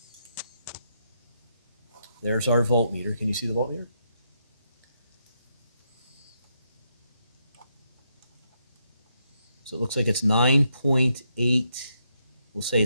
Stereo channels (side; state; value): both; inverted; correlation -0.79